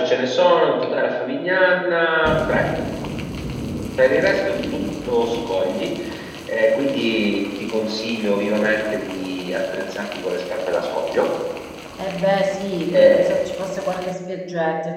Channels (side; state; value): both; identical; correlation 1.00